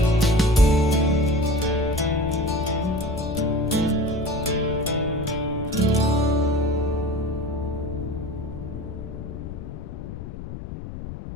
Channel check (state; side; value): noise; left; rumble, 9 dB below the sound